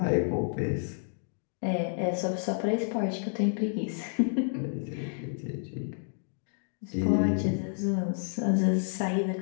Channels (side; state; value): right; silent; digital silence